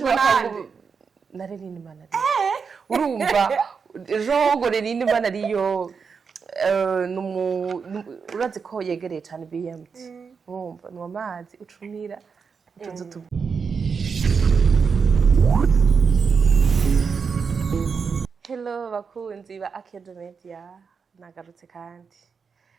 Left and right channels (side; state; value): left; quieter; 5.7 dB